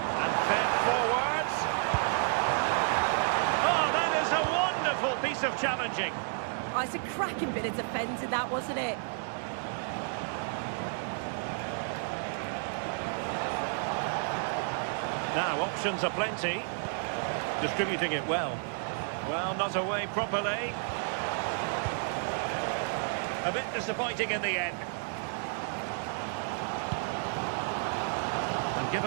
fed forwards. Oh, that is a wonderful piece of challenging. Oh, it's a cracking bit of defending, that, wasn't it? Now, options are plenty. Distributing it well. Well, not away properly. A bit disappointing in the end. And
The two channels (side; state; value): left; silent; 57 dB below the other